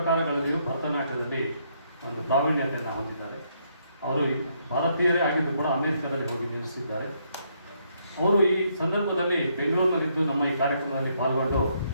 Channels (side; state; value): both; inverted; correlation -0.73